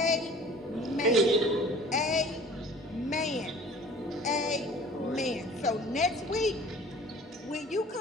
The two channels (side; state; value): both; normal; correlation 0.47